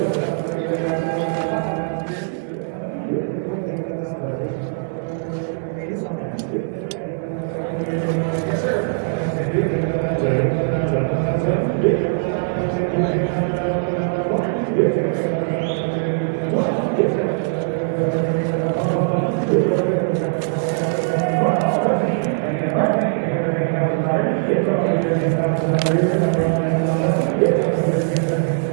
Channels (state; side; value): silent; left; digital silence